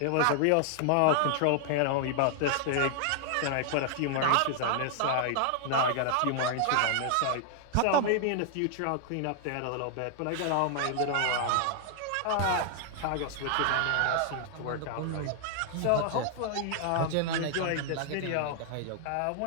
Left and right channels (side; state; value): both; different; correlation 0.00